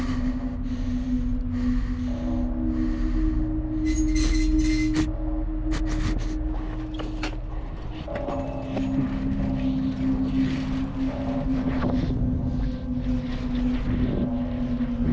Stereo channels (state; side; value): identical; both; correlation 1.00